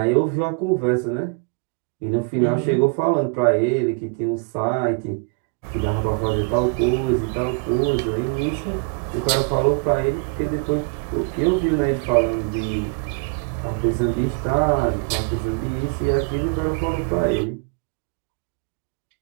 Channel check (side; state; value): left; quieter; 33.9 dB